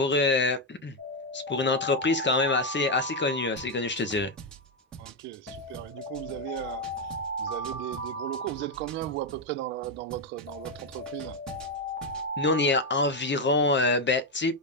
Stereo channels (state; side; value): normal; both; correlation 0.05